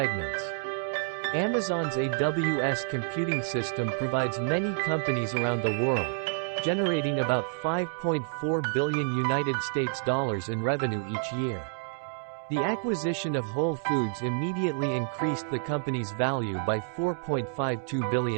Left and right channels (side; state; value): left; silent; 56 dB below the other